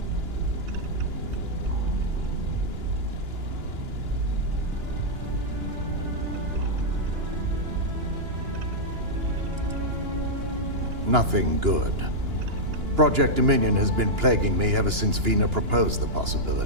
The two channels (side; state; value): left; late; 2.9 ms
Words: Nothing good. Project Dominion has been plaguing me ever since Vina proposed the